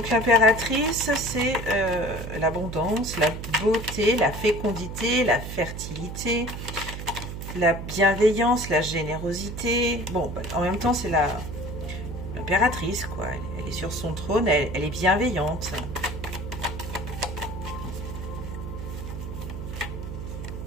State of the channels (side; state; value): right; noise; hum, 7 dB below the sound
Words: l'impératrice, c'est l'abondance, la beauté, la fécondité, la fertilité, la bienveillance, la générosité. Bon, bah, en même temps, c'est l'impératrice, quoi. Elle est sur son trône, elle est bienveillante.